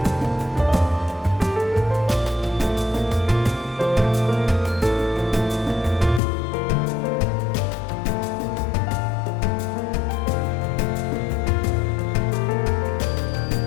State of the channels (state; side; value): drops out; right; at 6.2 s